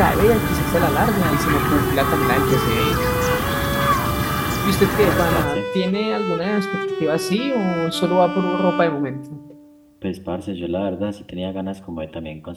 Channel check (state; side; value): identical; both; correlation 1.00